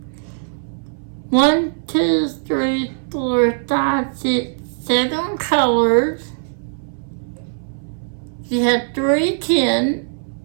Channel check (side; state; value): left; silent; 63 dB below the other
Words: 1, 2, 3, 4, 5, 6, 7 colors. You have 3 tin,